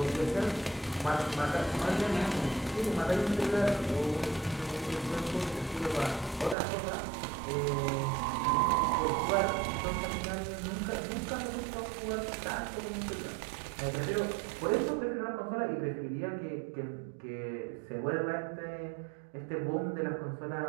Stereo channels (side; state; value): left; drops out; at 6.6 s